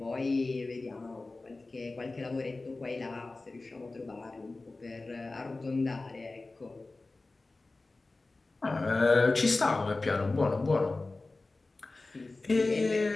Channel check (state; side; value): quieter; right; 3.3 dB